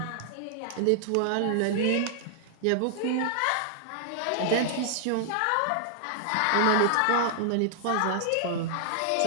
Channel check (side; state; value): both; different; correlation -0.01